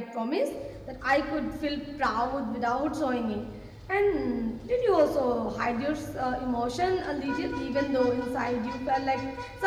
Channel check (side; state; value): both; identical; correlation 1.00